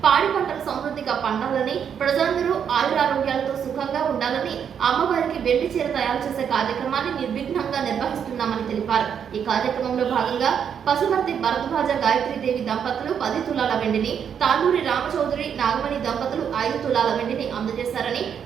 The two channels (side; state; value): left; quieter; 7.9 dB